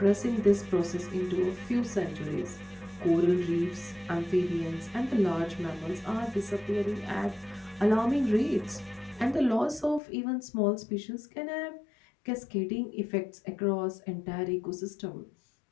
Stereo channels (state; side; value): drops out; right; at 10.0 s